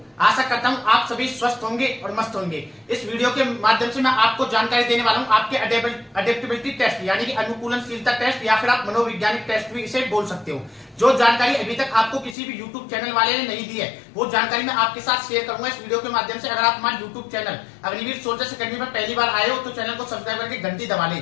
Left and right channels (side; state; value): right; drops out; at 12.4 s